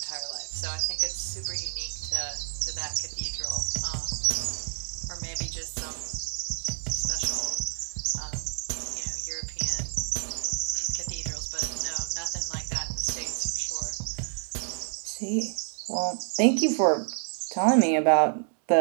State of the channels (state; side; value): silent; left; 59 dB below the other